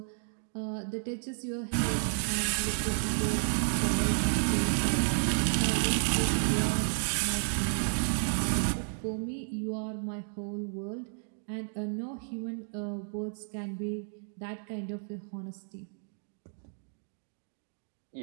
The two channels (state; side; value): silent; left; digital silence